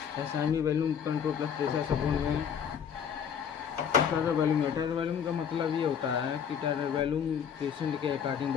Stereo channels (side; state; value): right; quieter; 7.8 dB